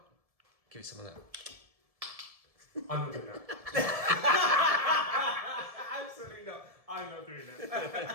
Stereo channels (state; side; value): late; left; 1.7 ms